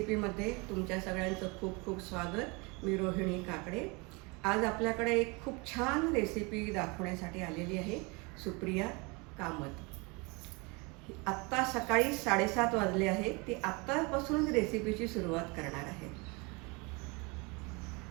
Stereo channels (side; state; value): left; quieter; 28.3 dB